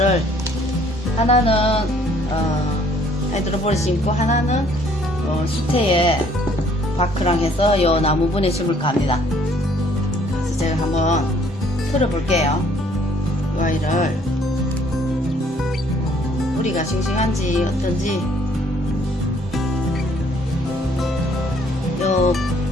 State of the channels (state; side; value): normal; both; correlation 0.61